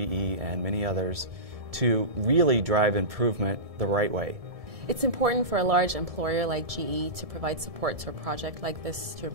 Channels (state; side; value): late; left; 1.7 ms